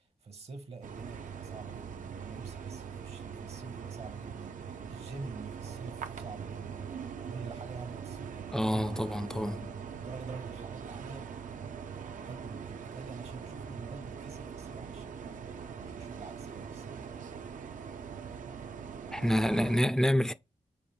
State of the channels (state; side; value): normal; both; correlation 0.86